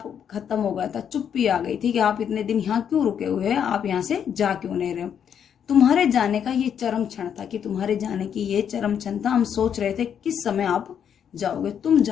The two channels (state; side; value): quieter; right; 8.4 dB